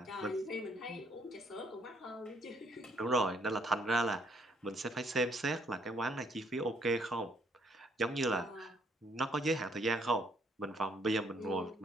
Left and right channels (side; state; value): both; normal; correlation 0.68